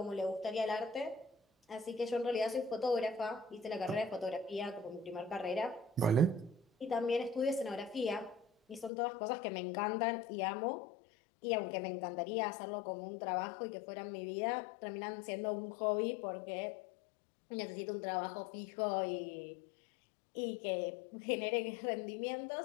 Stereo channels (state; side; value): drops out; right; at 8.9 s